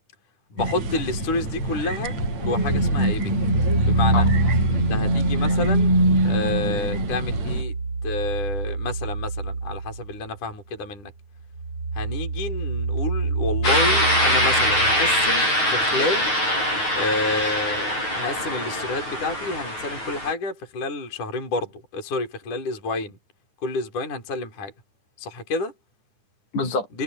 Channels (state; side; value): late; right; 9.3 ms